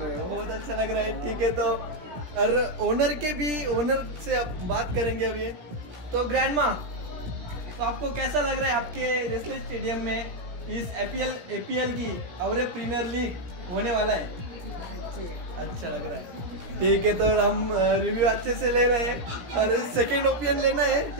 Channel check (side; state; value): left; late; 17 ms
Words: रहा है. बहुत अच्छा लग रहा है. ठीक है तो और ओनर से अब बात करेंगे अभी. तो ग्रैंडमा तो आपको कैसा लग रहा है आपके देसले स्टेडियम में इस एपीएल की और प्रीमियर लीग होने वाला है. अच्छा लग रहा है. ठीक है तो हम रिव्यू अच्छे से ले रहे हैं और सेकेंड ओपिनियन लेना है.